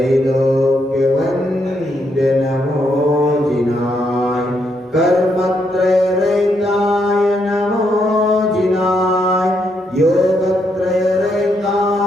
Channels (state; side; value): normal; both; correlation 0.77